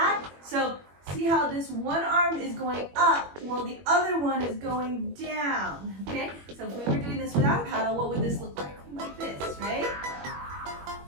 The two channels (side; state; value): left; late; 21 ms